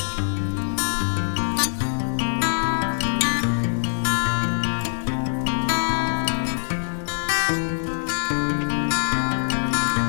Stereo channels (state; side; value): silent; right; digital silence